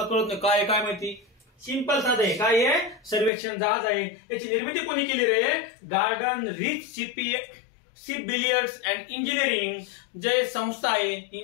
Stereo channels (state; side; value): drops out; right; at 3.3 s